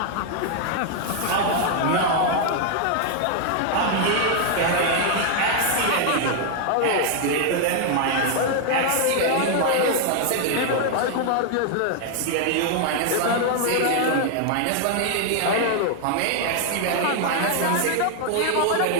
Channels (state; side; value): different; both; correlation 0.00